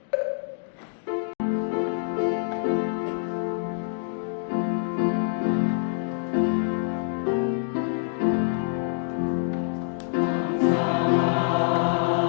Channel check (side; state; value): right; silent; digital silence